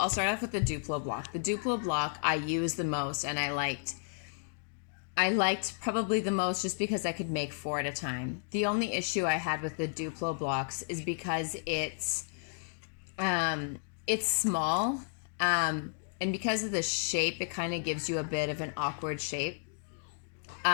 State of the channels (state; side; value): silent; right; digital silence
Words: start off with the Duplo block. The Duplo block I used the most, and I liked probably the most just because I could make 4 at a time. The only issue I had with the Duplo blocks is because it's small, and because of the shape, it kind of gives you a bit of an awkward shape.